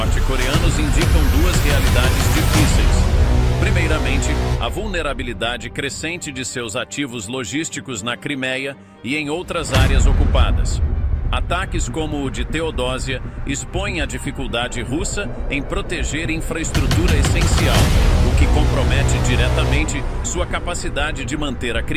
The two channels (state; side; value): identical; both; correlation 1.00